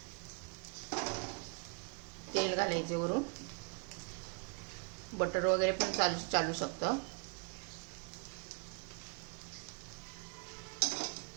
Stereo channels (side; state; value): left; quieter; 37.8 dB